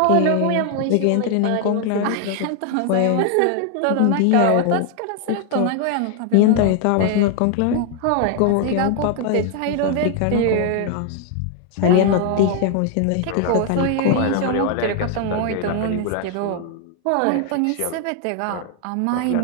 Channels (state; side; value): different; both; correlation 0.00